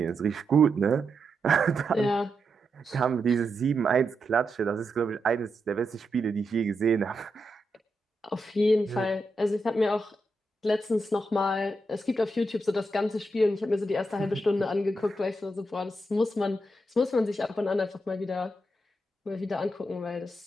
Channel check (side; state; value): both; normal; correlation 0.84